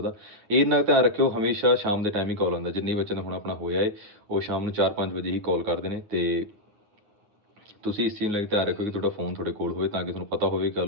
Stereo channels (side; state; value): left; late; 9.5 ms